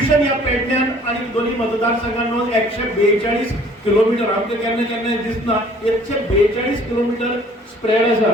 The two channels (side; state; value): both; normal; correlation 0.55